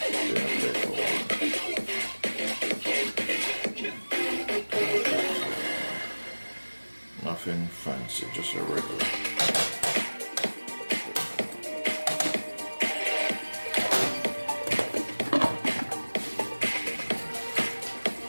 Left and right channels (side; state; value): both; inverted; correlation -1.00